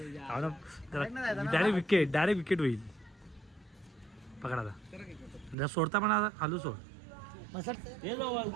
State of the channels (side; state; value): left; drops out; at 5.6 s